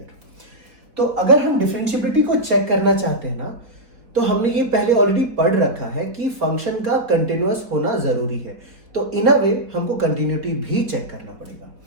तो अगर हम डिफरेंशिएबिलिटी को चेक करना चाहते हैं ना, तो हमने ये पहले ऑलरेडी पढ़ रखा है कि फंक्शन का कंटिन्यूअस होना जरूरी है। तो इन अ वे हमको कंटिन्यूटी भी चेक करना पड़ेगा।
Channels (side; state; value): left; late; 4.0 ms